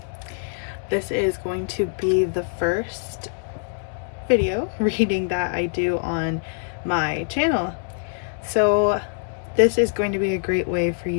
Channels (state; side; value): silent; right; digital silence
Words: This is going to be the first video reading that I do on my channel. So this is going to be a great way for